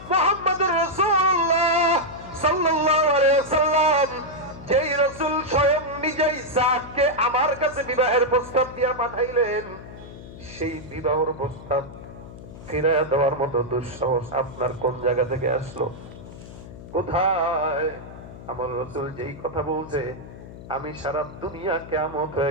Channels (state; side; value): noise; left; hum, 15 dB below the sound